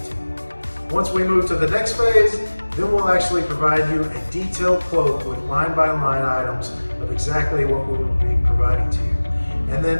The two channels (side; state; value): both; inverted; correlation -1.00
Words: you. Once we move to the next phase, then we'll actually provide you a detailed quote with line-by-line items of exactly what we will be providing to you. And then